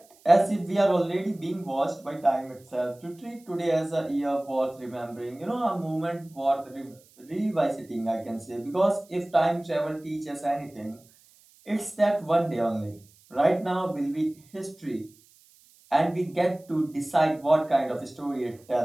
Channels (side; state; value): right; noise; hiss, 29 dB below the sound